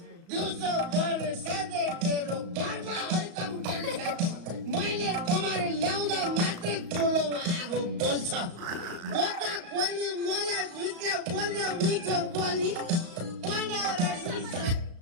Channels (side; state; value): left; late; 35 ms